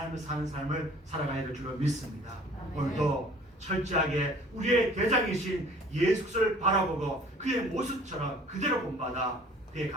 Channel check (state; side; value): normal; both; correlation 0.51